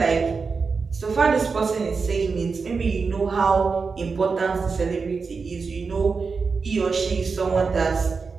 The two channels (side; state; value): left; quieter; 4.8 dB